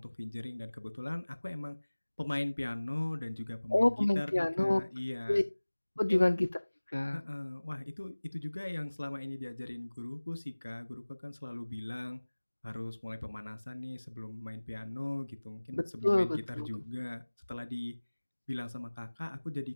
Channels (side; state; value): both; inverted; correlation -1.00